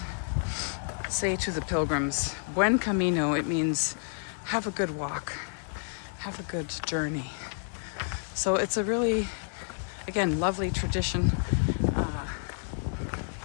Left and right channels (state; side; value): silent; right; digital silence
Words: say to the pilgrims, Buen Camino. It means have a good walk, have a good journey. So it's a really, again, lovely tradition.